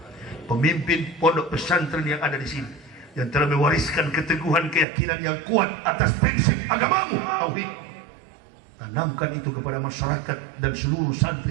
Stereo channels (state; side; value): drops out; left; at 4.9 s